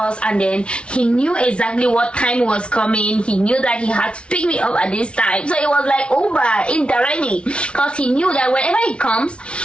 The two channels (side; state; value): right; late; 0.059 ms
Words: and then he knew exactly what time was coming. He knew that he had to pick me up at this time. So it was like Uber indirectly, because he knew that whenever he comes,